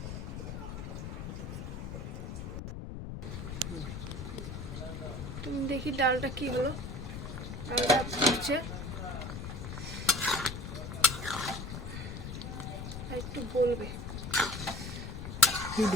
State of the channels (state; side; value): noise; left; rumble, 7 dB below the sound